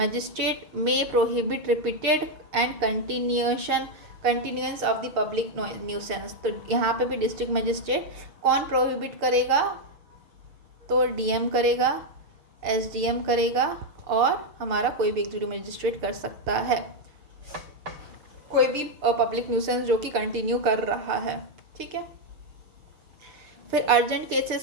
में prohibit repeated and continuance of the public nuisance. तो यहाँ पे भी डिस्ट्रिक्ट मजिस्ट्रेट कौन प्रोहिबिट करेगा, तो डीएम करेगा, एसडीएम करेगा, और हमारा कोई भी एग्जीक्यूटिव मजिस्ट्रेट कर सकता है, कोई भी पब्लिक न्यूसेंस जो कि कंटिन्यू कर रहा है, ठीक है। फिर अर्जेंट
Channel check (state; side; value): late; left; 6.7 ms